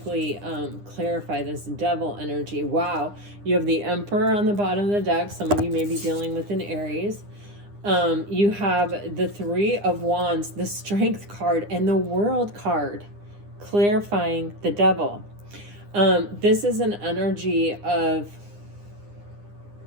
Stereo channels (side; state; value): left; late; 9.8 ms